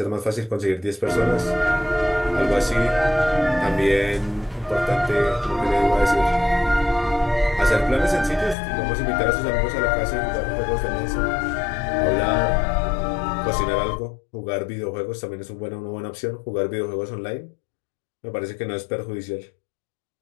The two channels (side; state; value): right; drops out; at 8.6 s